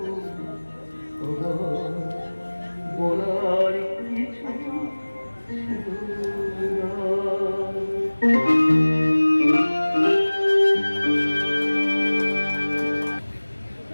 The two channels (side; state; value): both; inverted; correlation -1.00